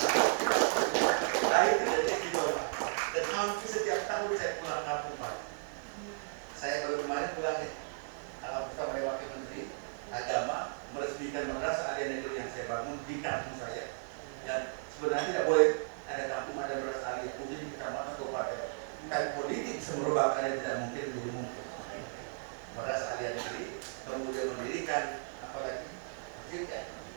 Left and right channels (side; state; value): left; silent; digital silence